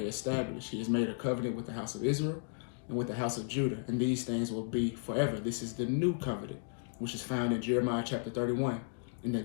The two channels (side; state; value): right; silent; 55 dB below the other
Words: established. He has made a covenant with the house of Israel and with the house of Judah, and these things will be forever. This is the new covenant, which is found in Jeremiah chapter 31. And the